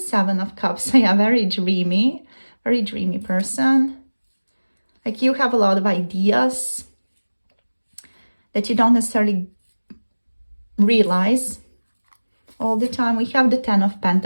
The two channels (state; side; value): inverted; both; correlation -1.00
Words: of Cups. So yeah, very dreamy person. Like, you have a lot of ideas that you don't necessarily realize all the time. We have the Ten of